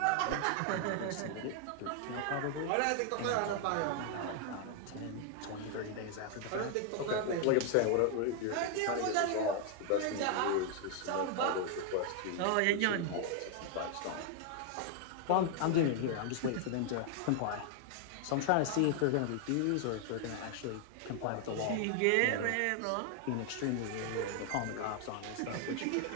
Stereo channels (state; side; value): different; both; correlation 0.00